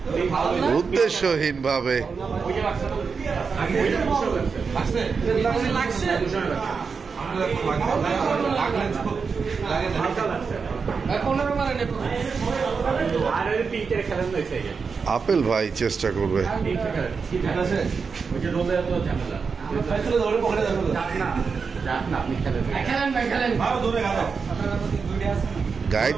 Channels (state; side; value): quieter; left; 5.3 dB